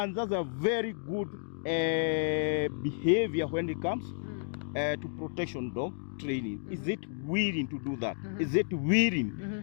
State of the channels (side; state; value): right; silent; digital silence